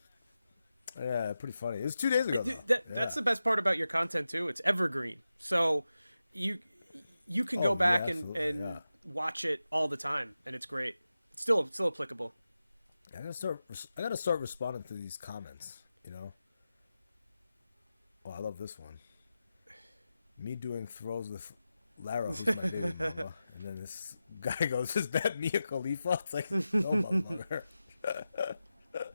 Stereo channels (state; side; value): inverted; both; correlation -0.92